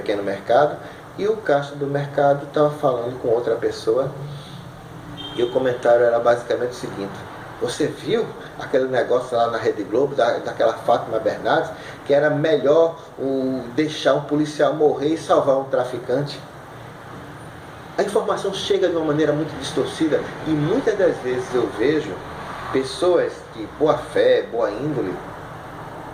mercado, e o caixa do mercado estava falando com outra pessoa, e o comentário era basicamente o seguinte: você viu aquele negócio lá na Rede Globo, daquela Fátima Bernardes, que era melhor deixar um policial morrer e salvar um traficante? A informação chega de uma maneira muito distorcida, e muitas das vezes eu vejo pessoas de boa fé, boa índole,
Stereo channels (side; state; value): both; identical; correlation 1.00